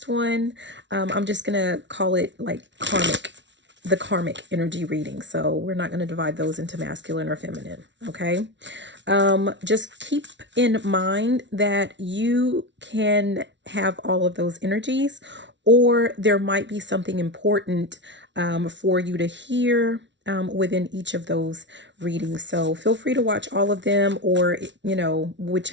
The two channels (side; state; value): left; late; 0.52 ms